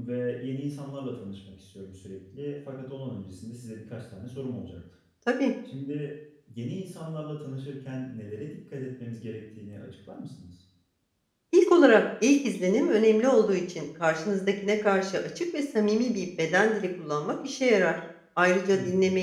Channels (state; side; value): identical; both; correlation 1.00